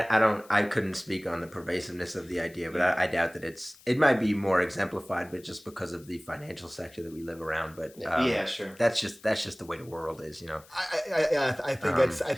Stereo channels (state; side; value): noise; left; hiss, 25 dB below the sound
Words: couldn't speak on the pervasiveness of the idea, but I doubt that it might be more exemplified, but just because of the financial sector that we live around. But yeah, sure. That's just the way the world is, I think